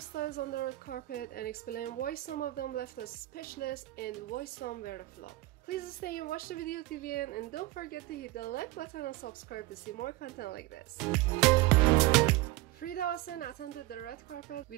on the red carpet and explained why some of them left us speechless and why some were a flop. Please stay and watch the video till the end and don't forget to hit the like button and subscribe to see more content like this. Frida Asen attended the red carpet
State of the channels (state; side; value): quieter; left; 18.2 dB